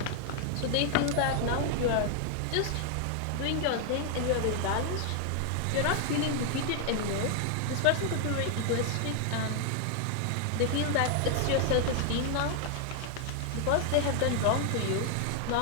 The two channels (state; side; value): different; both; correlation 0.00